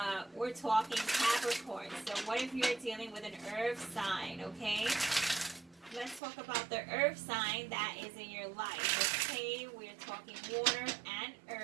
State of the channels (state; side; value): drops out; left; at 6.2 s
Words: we're talking Capricorn. So what if you're dealing with an earth sign, okay? Let's talk about the earth sign that is in your life, okay? We're talking water and